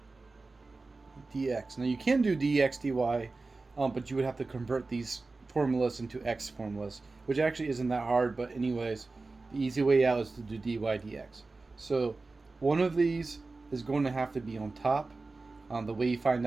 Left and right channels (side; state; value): left; quieter; 3.6 dB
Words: dx. Now you can do dx dy, but you would have to convert these formulas into x formulas, which actually isn't that hard, but anyways, the easy way out is to do dy dx. So one of these is going to have to be on top. The way you find